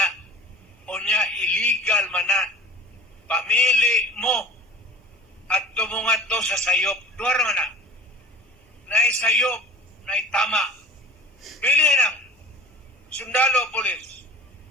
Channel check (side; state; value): both; normal; correlation 0.40